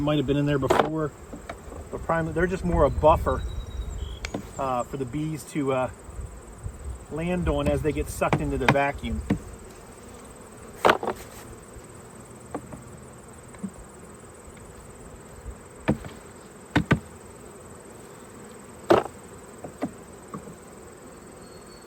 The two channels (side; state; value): both; identical; correlation 1.00